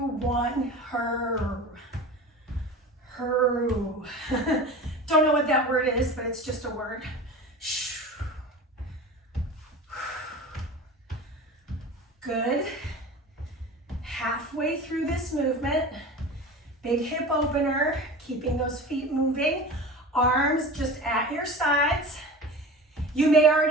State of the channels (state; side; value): normal; both; correlation 0.34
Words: her. Don't know what that word is, but it's just a word. Good. Halfway through this movement, big hip opener, keeping those feet moving. Arms just at your sides. You may